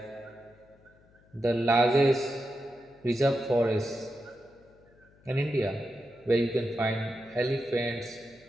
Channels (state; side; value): noise; left; hum, 29 dB below the sound